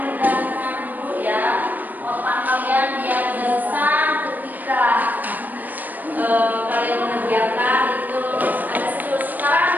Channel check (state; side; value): late; left; 0.085 ms